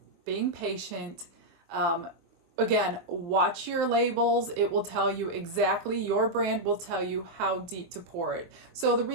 being patient. Again, watch your labels. It will tell you exactly, your brand will tell you how deep to pour it. So the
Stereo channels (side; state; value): left; late; 23 ms